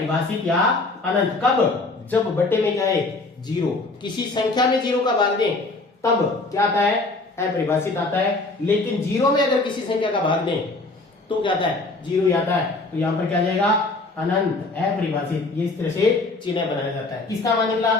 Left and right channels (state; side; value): quieter; right; 3.3 dB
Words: या अनंत कब, जब बटे में क्या है, 0। किसी संख्या में 0 का भाग दें तब क्या आता है, अपरिभाषित आता है। लेकिन 0 में अगर किसी संख्या का भाग दें तो क्या आता है, 0 ही आता है। तो यहां पर क्या जाएगा, अनंत, अपरिभाषित। ये इस तरह से चिन्ह बनाया जाता है। किसका मान निकला,